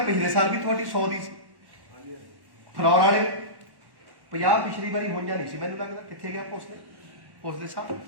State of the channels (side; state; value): left; late; 1.1 ms